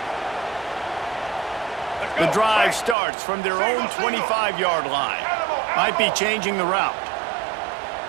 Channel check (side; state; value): left; drops out; at 3.0 s